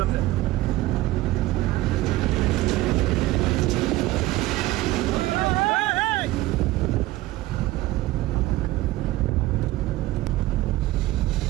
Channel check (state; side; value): quieter; left; 17.6 dB